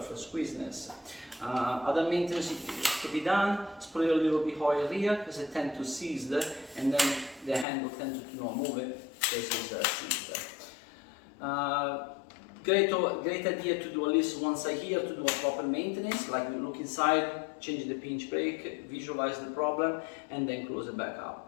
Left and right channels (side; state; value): right; drops out; at 7.7 s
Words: squeezeness. Other maintenance to be done, spray a little bit oil here because it tends to seize, and then the handle tends to not move it because it's seized. Great idea to do at least once a year to do a proper maintenance, like you look inside, change the pinch brake, visualize the problem, and then close it back